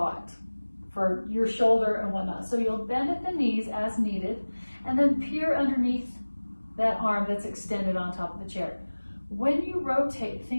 for your shoulder and whatnot, so you'll bend at the knees as needed, and then peer underneath that arm that's extended on top of the chair. When you rotate,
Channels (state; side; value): inverted; both; correlation -1.00